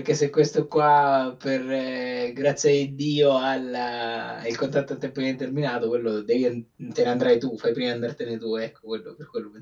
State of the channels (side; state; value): both; identical; correlation 1.00